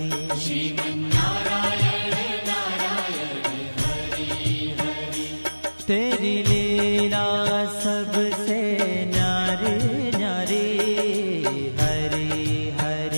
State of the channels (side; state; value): both; inverted; correlation -1.00